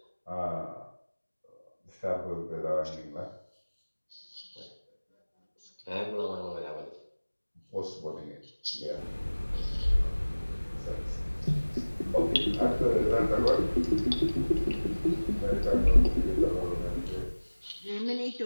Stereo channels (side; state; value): both; inverted; correlation -1.00